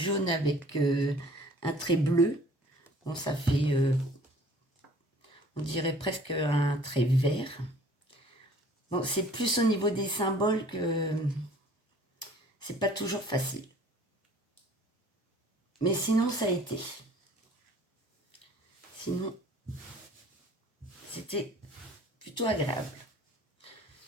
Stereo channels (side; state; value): both; normal; correlation 0.52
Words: avec un trait bleu. Bon, ça fait, on dirait presque un trait vert. Bon, c'est plus au niveau des symboles que c'est pas toujours facile. Mais sinon, ça a été. Sinon, c'était plutôt agréable.